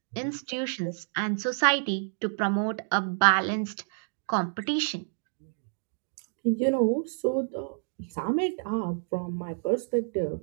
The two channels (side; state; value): left; silent; digital silence